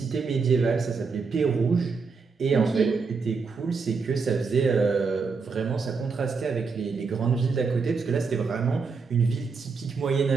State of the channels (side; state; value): left; quieter; 4.9 dB